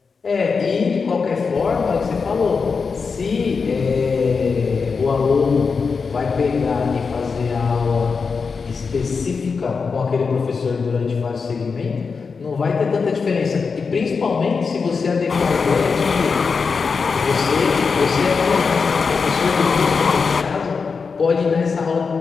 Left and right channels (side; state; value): right; quieter; 5.1 dB